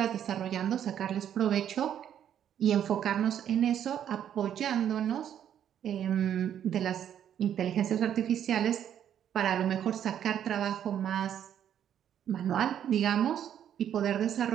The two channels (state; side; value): quieter; left; 9.8 dB